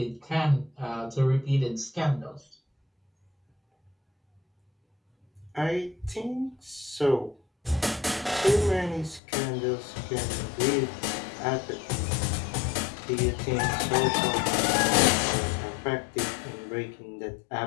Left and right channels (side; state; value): right; drops out; at 9.2 s